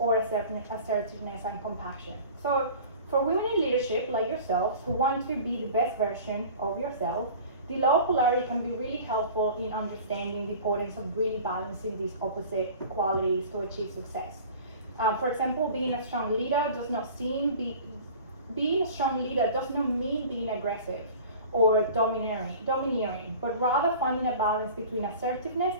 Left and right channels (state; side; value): inverted; both; correlation -0.41